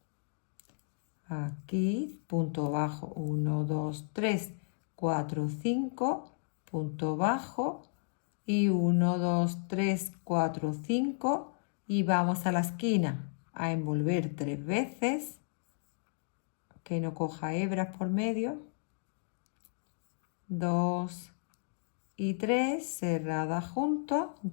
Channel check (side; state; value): right; silent; digital silence